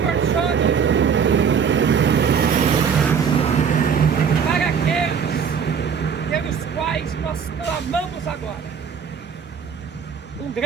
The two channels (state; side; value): quieter; left; 6.8 dB